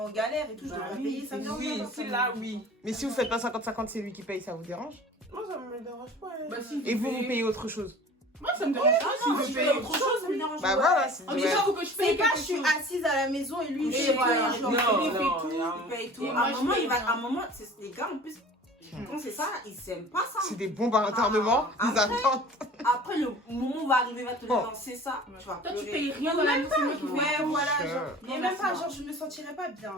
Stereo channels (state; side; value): normal; both; correlation 0.43